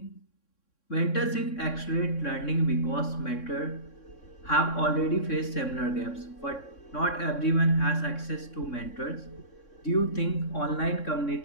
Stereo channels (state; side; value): late; right; 3.6 ms